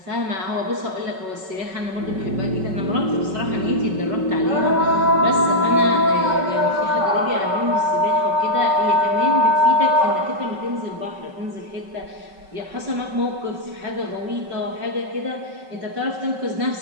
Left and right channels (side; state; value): left; late; 5.3 ms